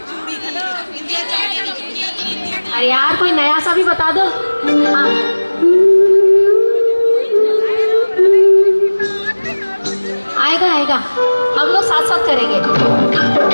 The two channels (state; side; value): inverted; both; correlation -1.00